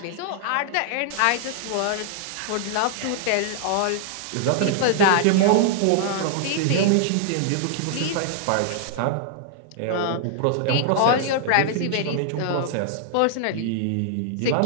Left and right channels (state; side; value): different; both; correlation -0.01